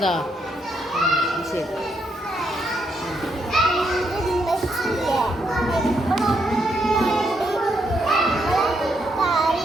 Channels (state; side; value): normal; both; correlation 0.77